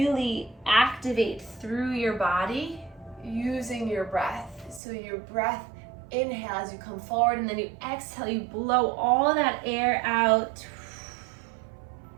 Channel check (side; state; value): left; drops out; at 4.8 s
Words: activate through your body using your breath. So your breath, inhale as you come forward, and then you exhale, you blow all that air out.